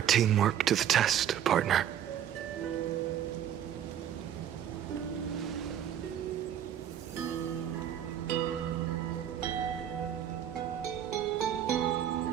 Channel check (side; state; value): left; quieter; 10.1 dB